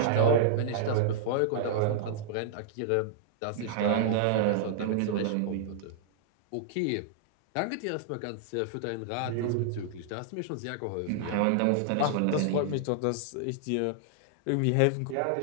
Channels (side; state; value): both; different; correlation -0.01